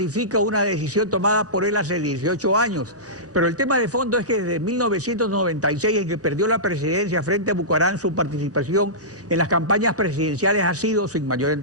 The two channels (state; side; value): normal; both; correlation -0.18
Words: una decisión tomada por él hace 18 años. Pero el tema de fondo es que desde 1996, en que perdió la presidencia frente a Bucarán, su participación en las campañas presidenciales ha sido sin mayor